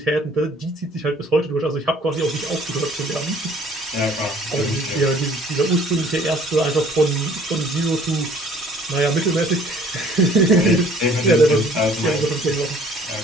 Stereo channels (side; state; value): both; normal; correlation 0.55